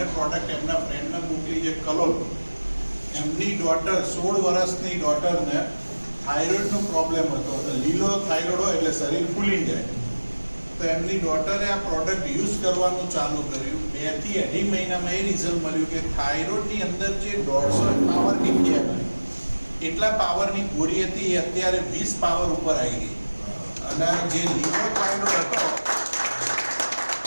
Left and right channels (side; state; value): both; inverted; correlation -1.00